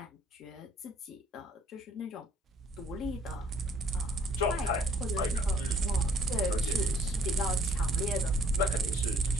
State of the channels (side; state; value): both; normal; correlation 0.61